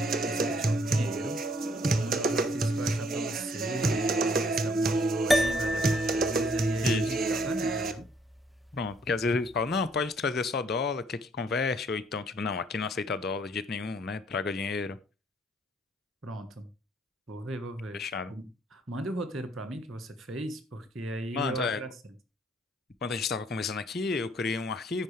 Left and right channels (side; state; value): both; normal; correlation 0.65